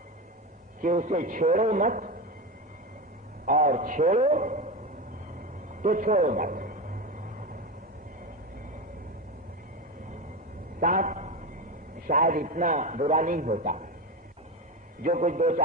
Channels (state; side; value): normal; both; correlation 0.18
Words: कि उसे छेड़ो मत और छेड़ो तो छोड़ो मत। सांप शायद इतना बुरा नहीं होता। जो कुछ